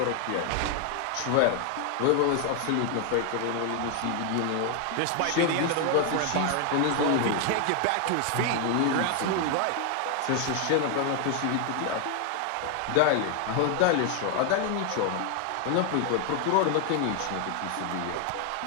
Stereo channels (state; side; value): different; both; correlation 0.01